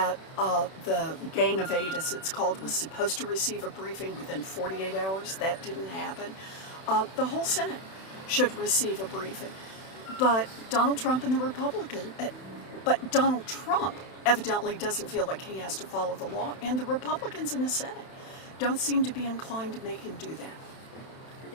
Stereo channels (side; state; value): right; late; 31 ms